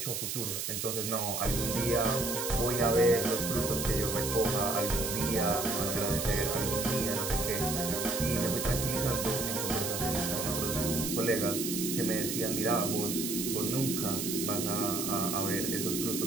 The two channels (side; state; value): right; noise; hiss, 3 dB below the sound